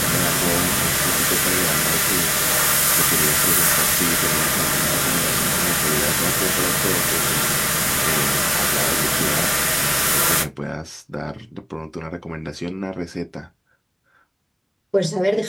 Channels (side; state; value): both; identical; correlation 1.00